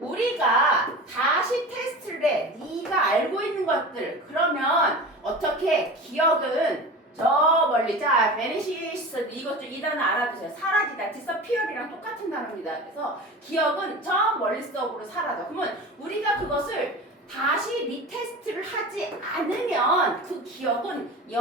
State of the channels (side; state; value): both; normal; correlation 0.33